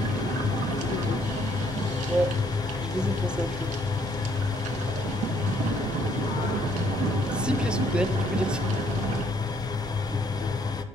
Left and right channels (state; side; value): normal; both; correlation 0.67